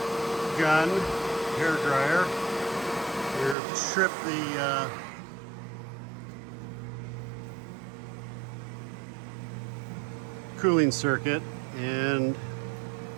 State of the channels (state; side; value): drops out; left; at 3.6 s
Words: gun. Hairdryer. Here, strip the cooling circuit, and